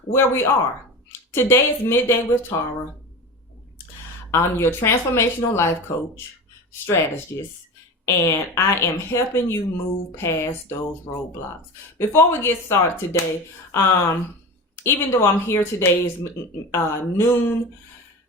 where we are. Today is Midday with Tara. I'm your transformational life coach, strategist, and I am helping you move past those roadblocks. Before we get started today, even though I'm here today is noon,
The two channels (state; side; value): normal; both; correlation 0.29